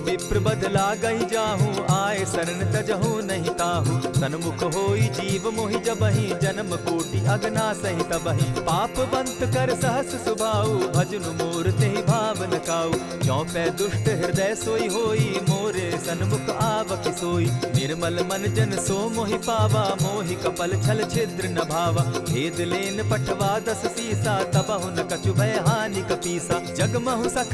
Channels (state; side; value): identical; both; correlation 1.00